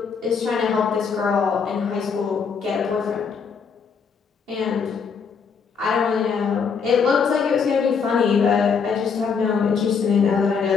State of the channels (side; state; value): right; quieter; 6.0 dB